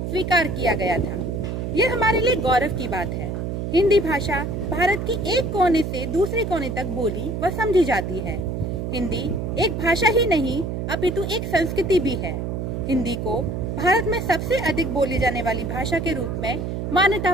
किया गया था। यह हमारे लिए गौरव की बात है। हिंदी भाषा भारत की एक कोने से दूसरे कोने तक बोली व समझी जाती है। हिंदी एक भाषा ही नहीं अपितु एक संस्कृति भी है। हिंदी को भारत में सबसे अधिक बोली जाने वाली भाषा के रूप में मान्यता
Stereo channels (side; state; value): right; noise; hum, 3 dB below the sound